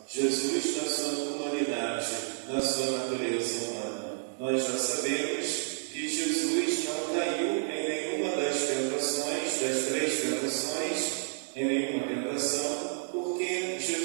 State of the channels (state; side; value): silent; left; 58 dB below the other